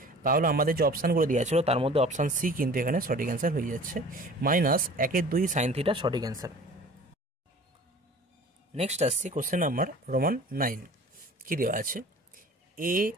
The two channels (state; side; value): normal; both; correlation 0.44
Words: তাহলে আমাদের যে অপশানগুলো দেওয়া ছিল তার মধ্যে অপশান সি কিন্তু এখানে সঠিক অ্যান্সার হয়ে যাচ্ছে, মাইনাস 1/2 সাইন থিটা সঠিক অ্যান্সার। নেক্সট আসছি কোশ্চেন নাম্বার রোমান 9, কী দেওয়া আছে, এ